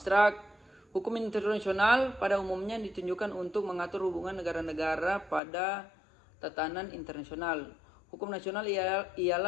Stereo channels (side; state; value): right; drops out; at 5.4 s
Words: Hukum internasional pada umumnya ditunjukkan untuk mengatur hubungan negara-negara pada tatanan internasional. Hukum nasional